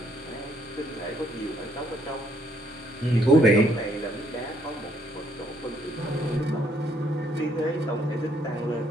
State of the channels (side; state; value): both; normal; correlation 0.68